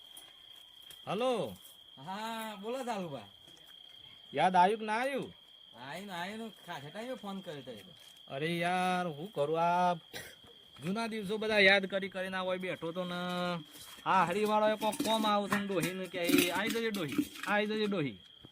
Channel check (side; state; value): both; identical; correlation 1.00